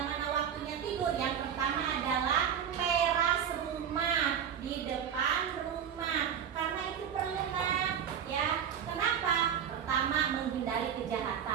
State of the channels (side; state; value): left; quieter; 8.4 dB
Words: mana waktunya tidur, yang pertama adalah teras rumah, di depan rumah, karena itu perlu nak ya. Kenapa? Pertama, menghindari